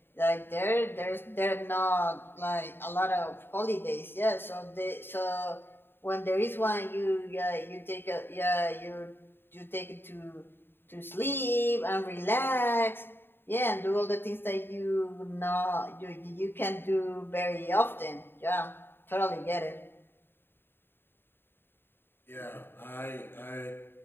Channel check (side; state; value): right; late; 0.10 ms